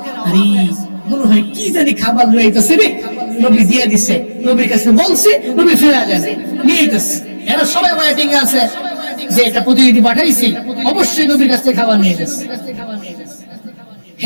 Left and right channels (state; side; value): inverted; both; correlation -1.00